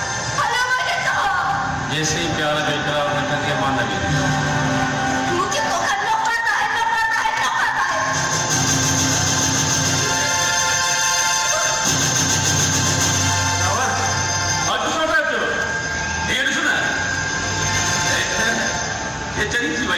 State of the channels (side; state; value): both; identical; correlation 1.00